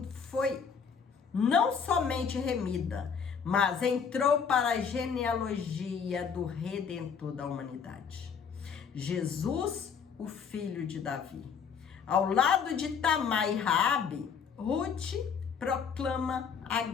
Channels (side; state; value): right; quieter; 6.5 dB